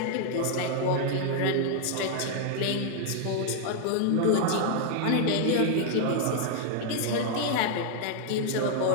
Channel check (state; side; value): different; both; correlation 0.00